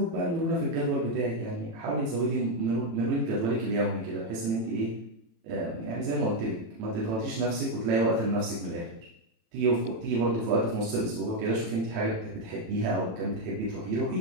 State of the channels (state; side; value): late; left; 18 ms